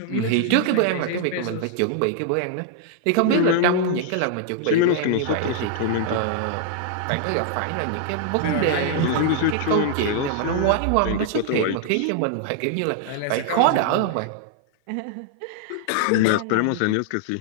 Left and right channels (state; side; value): different; both; correlation 0.00